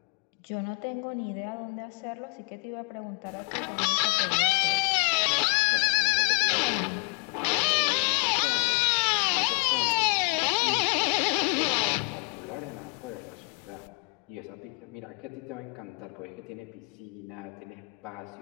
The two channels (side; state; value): right; quieter; 34.4 dB